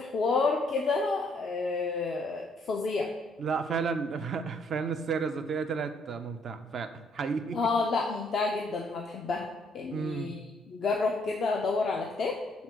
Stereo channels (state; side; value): normal; both; correlation 0.68